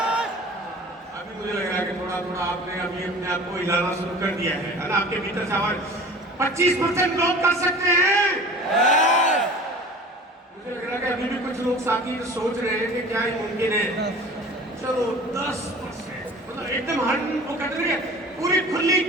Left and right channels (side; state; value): both; normal; correlation 0.42